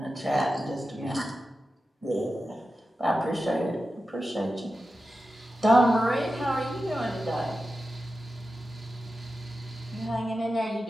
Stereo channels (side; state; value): both; normal; correlation 0.92